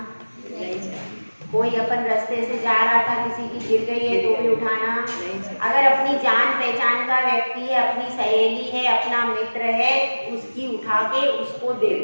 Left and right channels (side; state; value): both; inverted; correlation -1.00